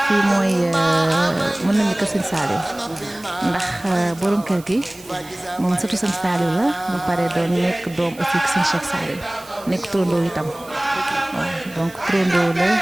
fii mooy mën nañu kër sëñ Saliou ndax borom kër gi moom surtout sëñ Saliou la ba pare doon nekk doom aussi sëñ Cheikh Saliou nekk turandoo itam waaw donc turandoo la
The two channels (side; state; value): right; noise; hiss, 22 dB below the sound